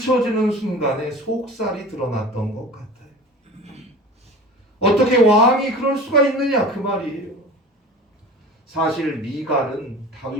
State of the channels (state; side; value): normal; both; correlation 0.37